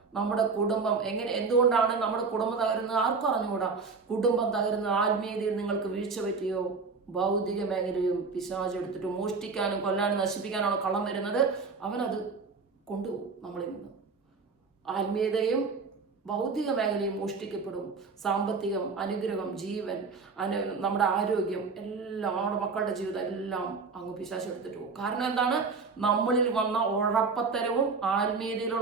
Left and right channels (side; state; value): left; quieter; 4.7 dB